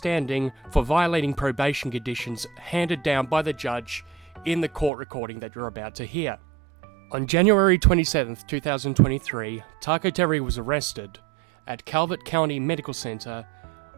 for violating probation conditions handed down by the judge in the court recording that you're about to hear. On January 27th, 2023, Taco Terry was arrested at Calvert County Medical Center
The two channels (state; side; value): drops out; left; at 4.9 s